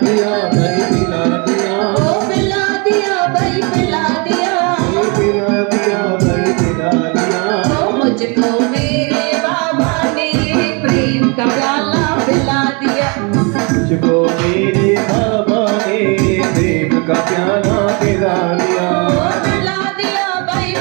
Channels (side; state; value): left; quieter; 32.0 dB